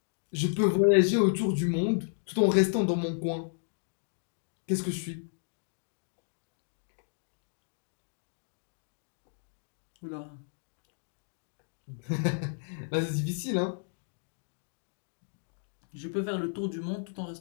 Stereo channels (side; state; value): right; silent; digital silence